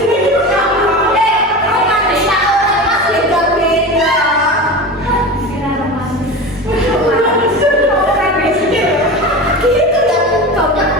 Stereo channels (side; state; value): both; normal; correlation 0.28